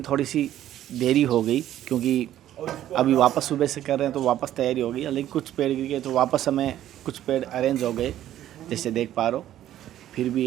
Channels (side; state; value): left; quieter; 12.3 dB